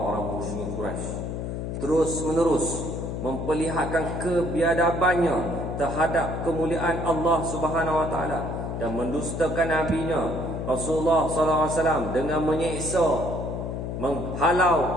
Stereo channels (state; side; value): noise; left; hum, 4 dB below the sound